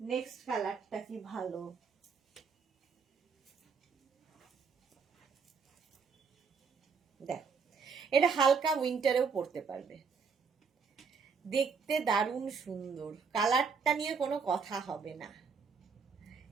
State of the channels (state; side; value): quieter; left; 5.5 dB